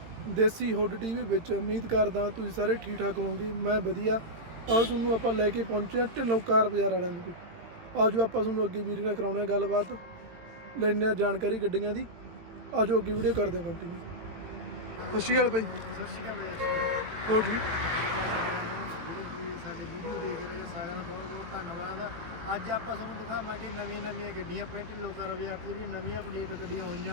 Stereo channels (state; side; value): late; left; 18 ms